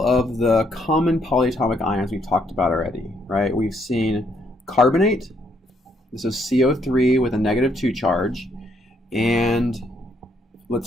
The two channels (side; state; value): both; normal; correlation 0.72